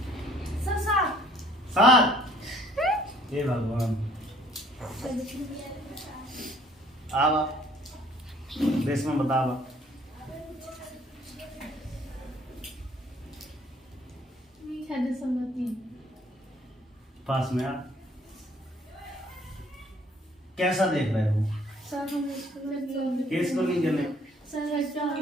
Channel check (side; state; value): both; normal; correlation 0.59